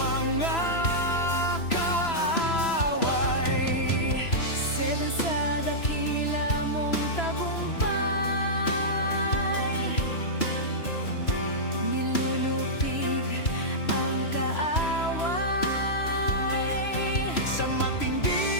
kaaway. Seven sa dakila mong tagumpay, nilulupig ang kaaway. Sa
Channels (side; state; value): right; late; 3.0 ms